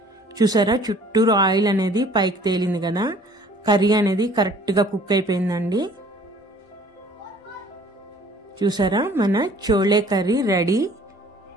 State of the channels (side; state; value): both; normal; correlation 0.54